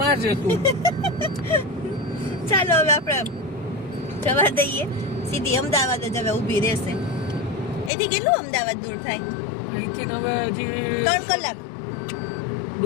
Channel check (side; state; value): right; drops out; at 7.9 s